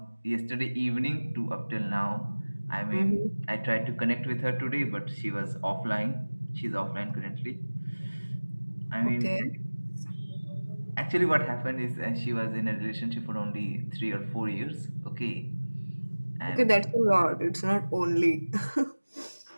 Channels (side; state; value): both; inverted; correlation -1.00